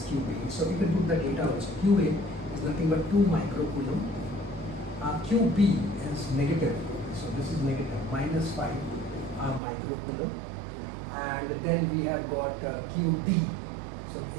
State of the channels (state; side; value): drops out; left; at 9.6 s